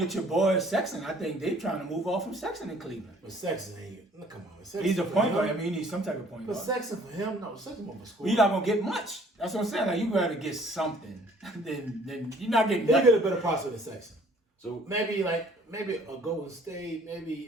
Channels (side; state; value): both; normal; correlation 0.57